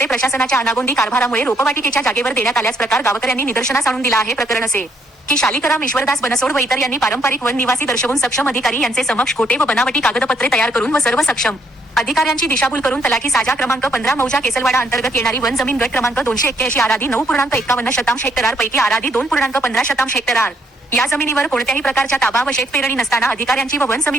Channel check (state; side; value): normal; both; correlation 0.71